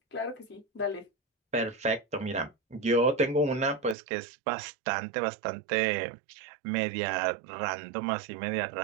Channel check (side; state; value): left; drops out; at 4.0 s